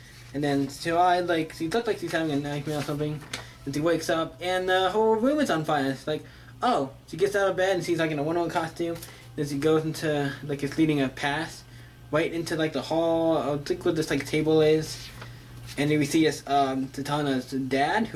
and then she looks like she's having a nightmare or something, and she wakes up, and the whole room is on fire. It's like, oh, she gets out of bed, and she's like in a Wonder Woman costume, then she goes into, like, it's leading a path, right into, like, the hall, I think where this, like, table is, and then we see this, Zatanna's dad,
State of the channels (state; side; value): identical; both; correlation 1.00